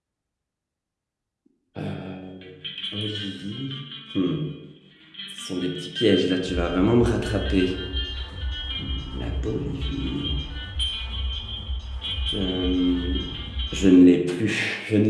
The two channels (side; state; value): both; identical; correlation 1.00